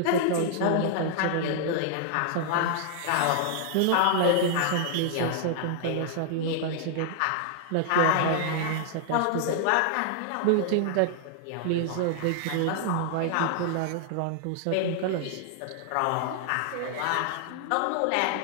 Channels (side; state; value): both; different; correlation -0.01